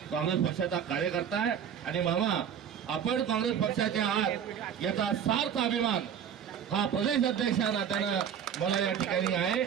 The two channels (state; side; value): quieter; left; 8.4 dB